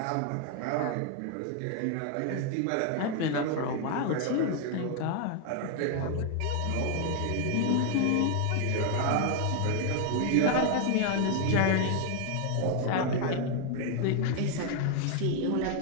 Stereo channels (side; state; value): both; different; correlation 0.00